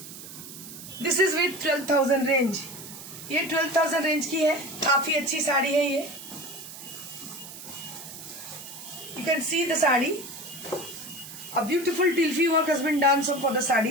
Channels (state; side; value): noise; right; hiss, 13 dB below the sound